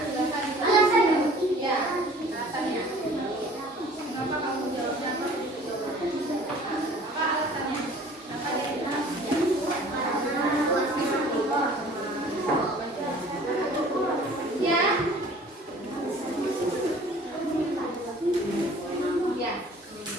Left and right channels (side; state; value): both; normal; correlation 0.49